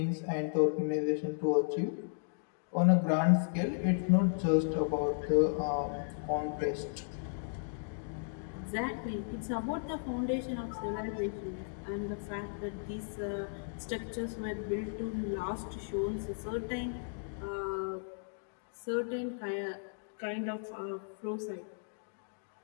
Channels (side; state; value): right; silent; digital silence